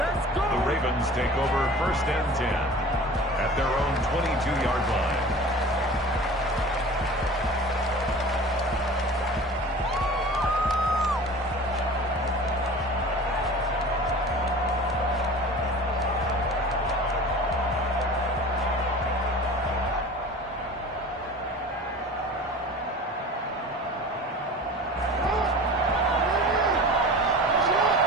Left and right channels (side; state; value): both; normal; correlation 0.39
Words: The Ravens take over 1st and 10 at their own 22-yard line.